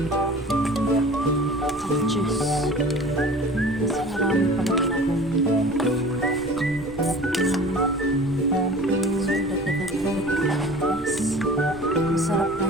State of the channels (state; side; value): noise; right; rumble, 19 dB below the sound